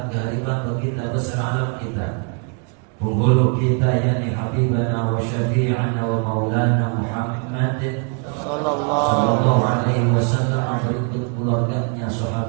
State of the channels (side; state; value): left; quieter; 38.0 dB